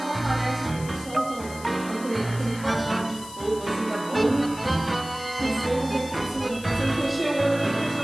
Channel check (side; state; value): left; noise; hiss, 15 dB below the sound